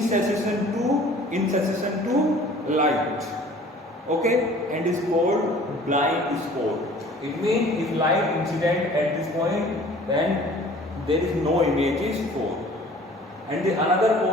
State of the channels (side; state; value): both; normal; correlation 0.49